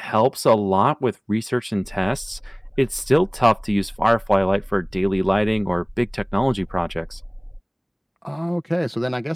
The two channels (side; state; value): both; identical; correlation 1.00